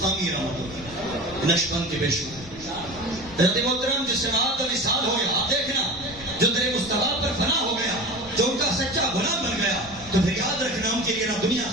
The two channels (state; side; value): noise; left; rumble, 19 dB below the sound